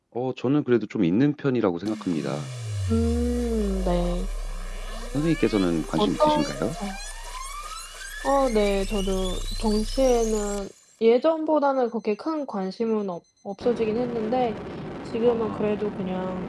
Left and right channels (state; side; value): identical; both; correlation 1.00